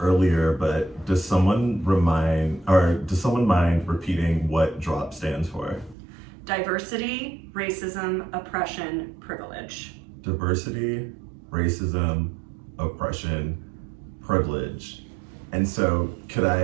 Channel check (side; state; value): left; drops out; at 6.0 s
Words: earlier, but does someone mind repeating what DROP stands for? Diversity, racism, oppression, privilege. Diversity, racism, oppression, privilege. And so could